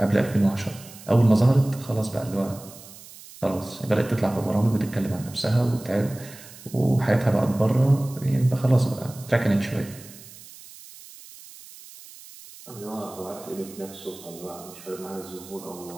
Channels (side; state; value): right; noise; hiss, 18 dB below the sound